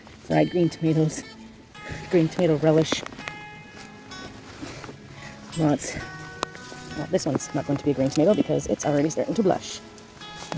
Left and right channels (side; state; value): both; identical; correlation 1.00